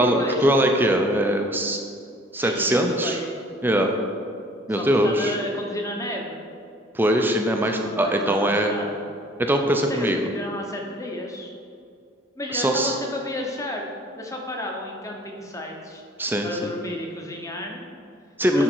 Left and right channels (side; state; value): both; normal; correlation 0.54